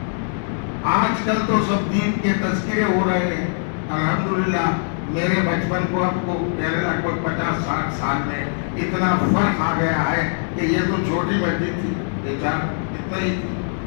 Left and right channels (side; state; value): right; silent; 64 dB below the other